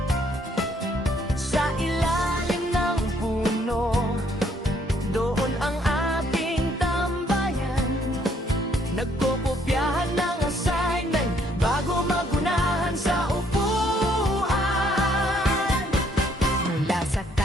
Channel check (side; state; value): both; normal; correlation 0.67